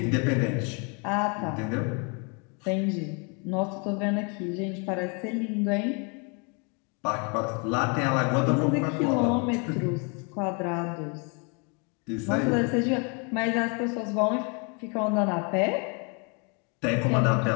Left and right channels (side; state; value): right; quieter; 34.5 dB